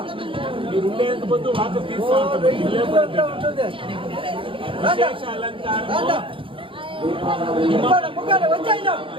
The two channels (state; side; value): late; left; 0.25 ms